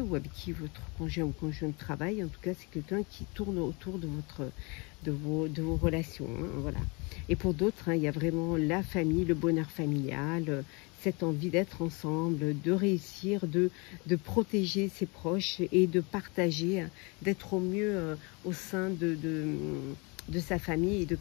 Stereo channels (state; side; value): quieter; right; 29.9 dB